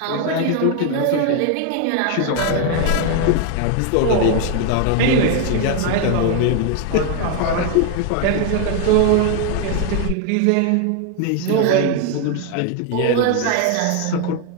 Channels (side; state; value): both; different; correlation 0.01